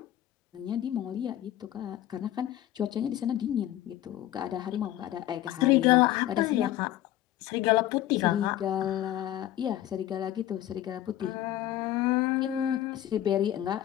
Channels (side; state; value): right; quieter; 13.1 dB